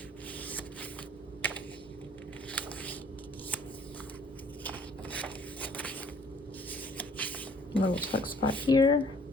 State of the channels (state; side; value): normal; both; correlation 0.57